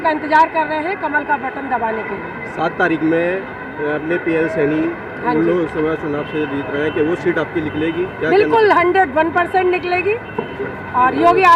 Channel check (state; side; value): identical; both; correlation 1.00